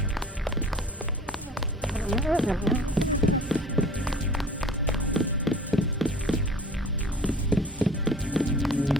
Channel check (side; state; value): both; normal; correlation 0.45